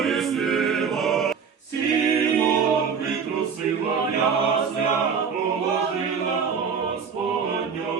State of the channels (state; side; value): quieter; left; 6.3 dB